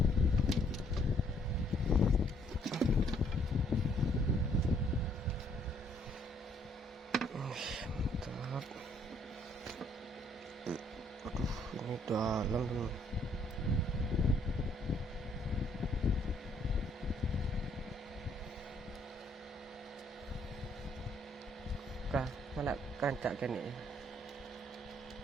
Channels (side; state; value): both; normal; correlation 0.66